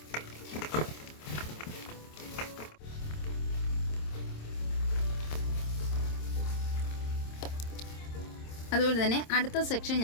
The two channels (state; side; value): late; right; 26 ms